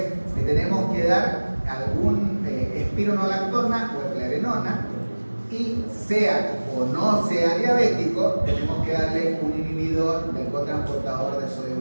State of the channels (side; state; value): both; inverted; correlation -1.00